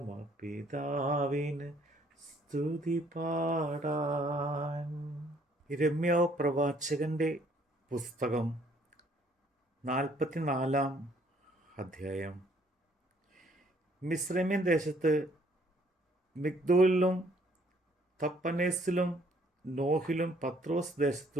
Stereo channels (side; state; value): both; normal; correlation 0.63